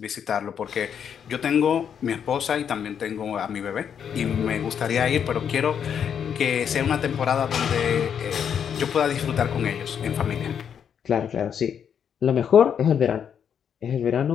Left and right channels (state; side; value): quieter; right; 8.0 dB